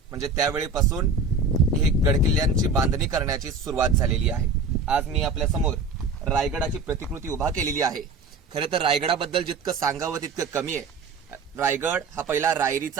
म्हणजे त्यावेळेपासून हे गडकिल्ल्यांची बांधणी करण्याची सुरुवात झालेली आहे। आज मी आपल्या समोर रायगडाची प्रतिकृती उभा केलेली आहे। खरे तर रायगडाबद्दल जितकं सांगावं तितकं कमी आहे। रायगड हा पहिला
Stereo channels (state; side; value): quieter; left; 4.2 dB